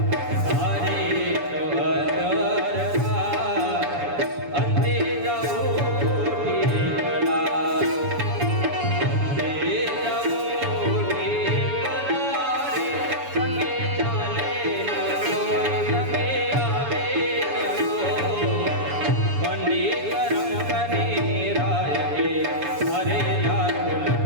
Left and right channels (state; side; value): late; left; 7.0 ms